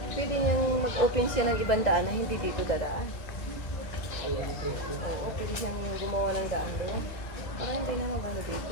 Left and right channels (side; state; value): right; late; 2.0 ms